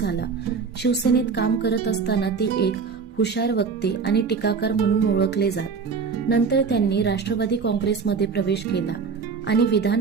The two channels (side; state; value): left; quieter; 5.4 dB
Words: शिवसेनेत काम करत असताना ते एक हुशार वक्ते आणि टीकाकार म्हणून ओळखले जात. नंतर त्यांनी राष्ट्रवादी काँग्रेसमध्ये प्रवेश केला आणि विधान